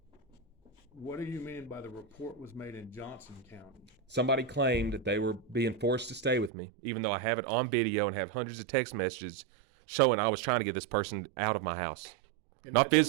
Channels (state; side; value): drops out; left; at 6.5 s